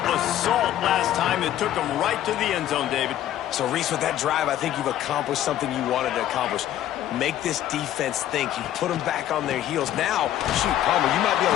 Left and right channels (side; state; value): right; quieter; 12.2 dB